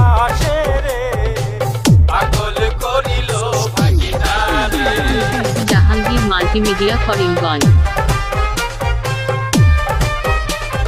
আসে রে। পাগল করিল ভাগিনা রে। জাহাঙ্গীর মাল্টিমিডিয়া করিমগঞ্জ।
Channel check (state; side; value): identical; both; correlation 1.00